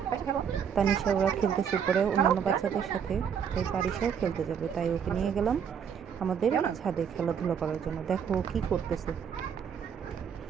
তানিশা ওরা খেলতেছে উপরে অন্যান্য বাচ্চাদের সাথে, তাই পারিসাও খেলতে যাবে, তাই ওকে নিয়ে গেলাম আমাদের ছাদে খেলাধুলা করার জন্য। দেখো ও কী করতেছে।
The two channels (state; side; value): quieter; left; 7.6 dB